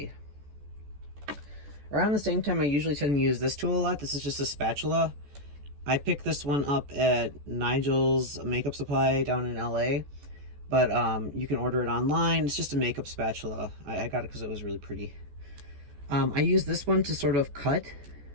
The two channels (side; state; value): left; late; 14 ms